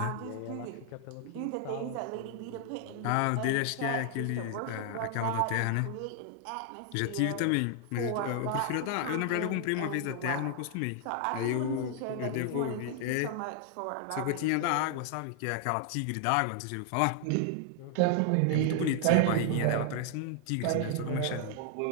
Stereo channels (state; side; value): different; both; correlation 0.00